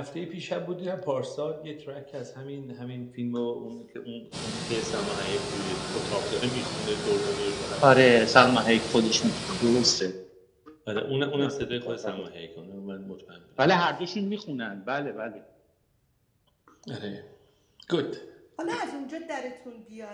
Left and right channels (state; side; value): identical; both; correlation 1.00